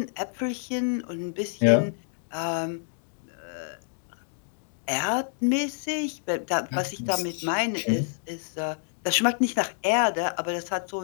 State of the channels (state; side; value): silent; right; digital silence